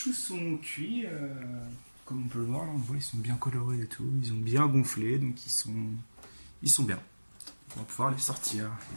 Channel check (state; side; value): inverted; both; correlation -1.00